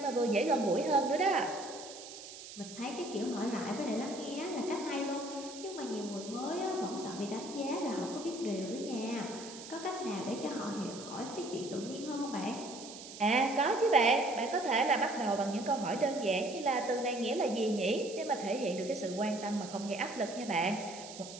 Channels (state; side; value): noise; right; hiss, 13 dB below the sound